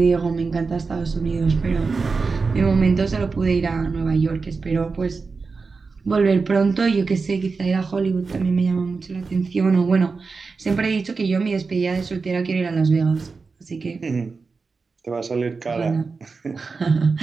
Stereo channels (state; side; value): quieter; left; 4.5 dB